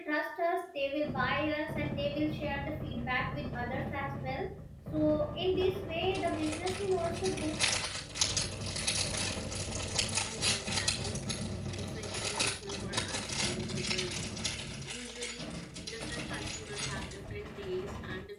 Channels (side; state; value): both; identical; correlation 1.00